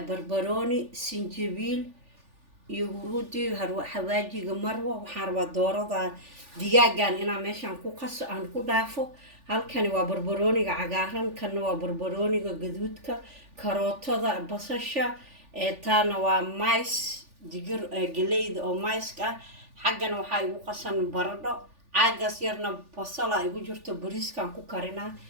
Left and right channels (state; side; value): late; left; 3.4 ms